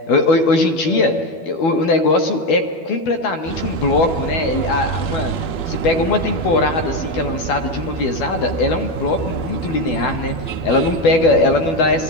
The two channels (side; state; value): right; late; 12 ms